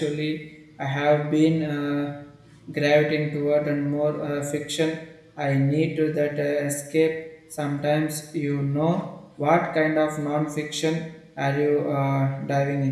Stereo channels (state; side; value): identical; both; correlation 1.00